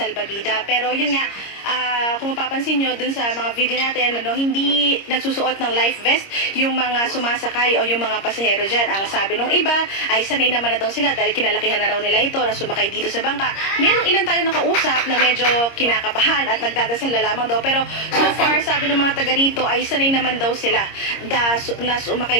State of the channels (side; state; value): right; late; 26 ms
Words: Pero yun nga, kung mapapansin nyo dun sa mga video natin, hindi nagsusuot ng life vest yung mga sumasakay o yung mga pasahero dyan. Ang sabi nung iba ay sanay naman na daw sila dahil kinalakihan na raw nila ito na sumakay dito sa bangka. Merong ilan tayo nakausap na medyo kinakabahan at nagdadasal na lamang daw. Pero so far, sabi ng mga taga rito ay sanay naman daw sila na